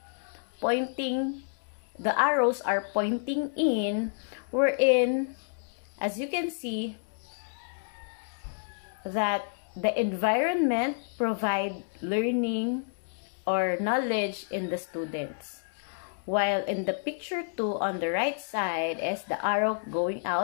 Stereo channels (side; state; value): right; silent; digital silence